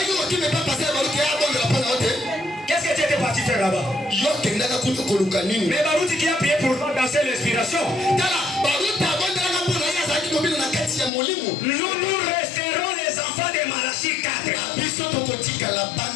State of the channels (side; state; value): right; drops out; at 11.1 s